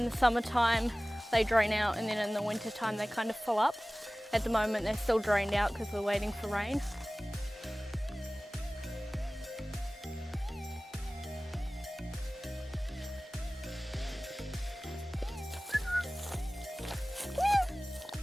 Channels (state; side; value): normal; both; correlation 0.98